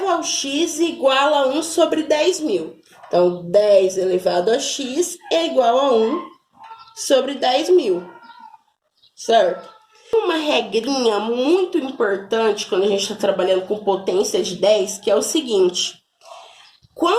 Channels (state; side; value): identical; both; correlation 1.00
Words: ao x igual a 1 sobre 10.000. Então, 10 elevado a x é igual a 1 sobre 10.000, certo? Uma regrinha muito importante quando a gente está trabalhando com potência de 10, que é o seguinte: